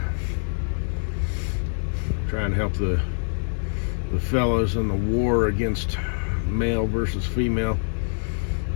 Trying to help the fellas in the war against male versus female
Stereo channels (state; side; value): silent; right; digital silence